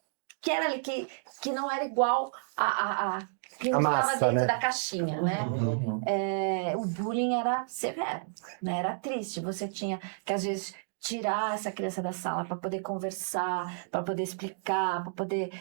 era ali, que não era igual a que não A estava massa, dentro né? da caixinha, né? O bullying era severo, né? Era triste. Você tinha que, às vezes, tirar essa criança da sala para poder conversar, para poder explicar, para poder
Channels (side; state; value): left; silent; digital silence